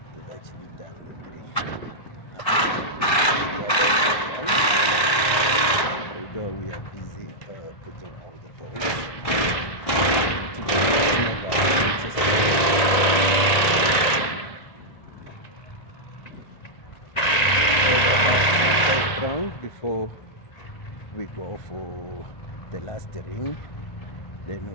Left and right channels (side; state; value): right; late; 1.9 ms